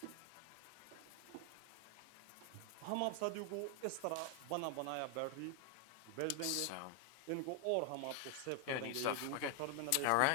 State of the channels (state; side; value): different; both; correlation 0.00